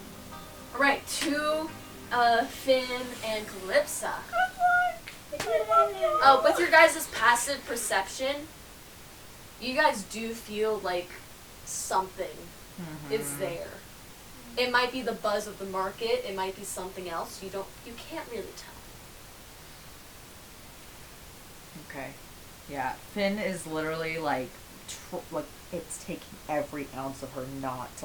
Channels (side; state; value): both; identical; correlation 1.00